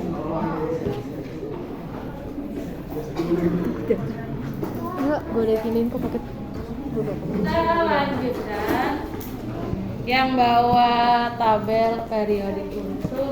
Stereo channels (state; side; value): identical; both; correlation 1.00